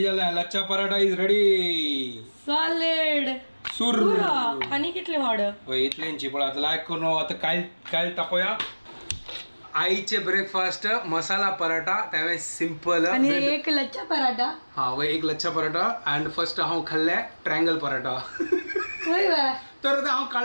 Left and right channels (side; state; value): both; inverted; correlation -1.00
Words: झाला lachha paratha is ready solid सुर आणि कितले वाड इतल्यांची पण आता लायक करून आता काय काय तापोया आईचे ब्रेकफास्ट मसाला पराठा त्यावेळेस सिंपल आणि एक लच्छा पराठा हा व एक लच्छा पराठा अँड फर्स्ट हांव खाल्ले ट्रायंगल पराठा होय बा तर आता हांव